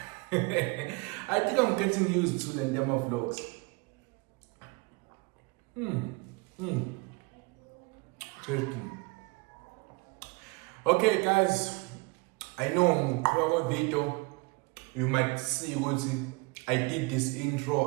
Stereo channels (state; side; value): quieter; left; 27.4 dB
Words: I think I'm getting used to the Ndema vlogs. Interesting. Okay, guys. I know in video you might see what I did this